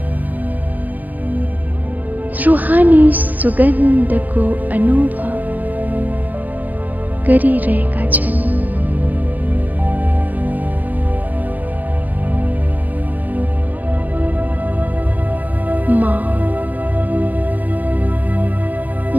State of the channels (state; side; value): late; left; 0.082 ms